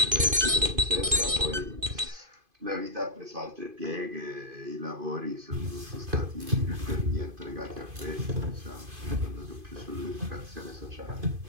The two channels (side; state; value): left; late; 2.5 ms